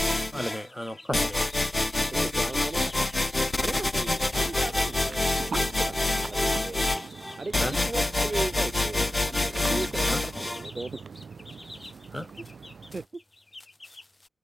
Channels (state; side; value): normal; both; correlation 0.94